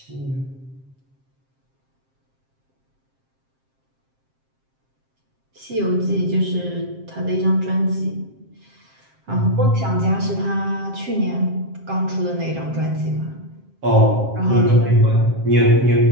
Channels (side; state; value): left; late; 7.6 ms